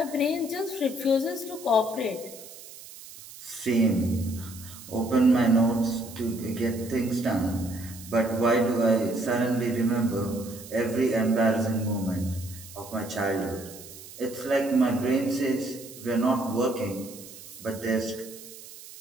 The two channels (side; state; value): right; noise; hiss, 16 dB below the sound